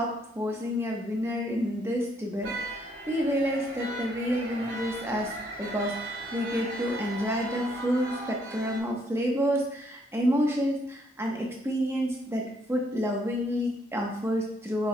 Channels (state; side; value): normal; both; correlation 0.70